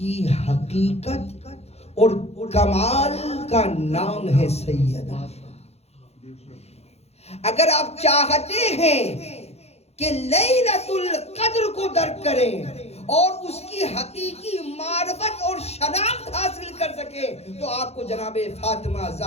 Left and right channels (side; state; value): right; late; 0.31 ms